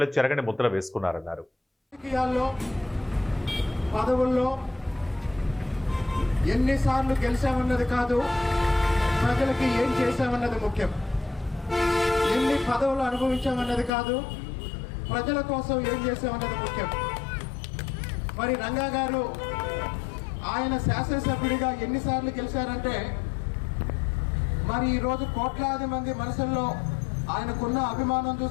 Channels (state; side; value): drops out; right; at 13.9 s